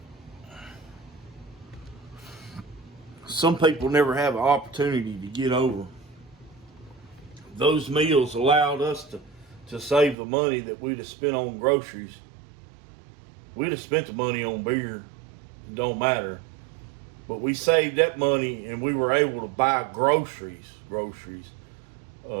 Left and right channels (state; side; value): drops out; left; at 10.2 s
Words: some people never have an opportunity to get over. Those meals allowed us to save the money that we'd have spent on groceries. We'd have spent the money on beer. It don't matter. But we saved that money and we were able to buy groceries